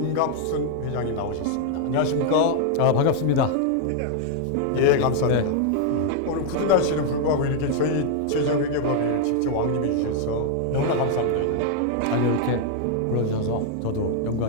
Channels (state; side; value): different; both; correlation 0.00